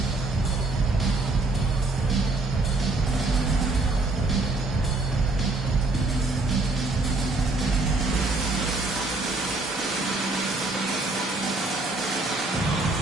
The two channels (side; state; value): left; quieter; 3.2 dB